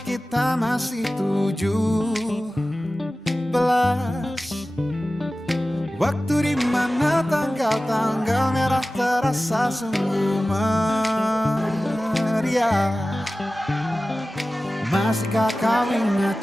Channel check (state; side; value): normal; both; correlation 0.96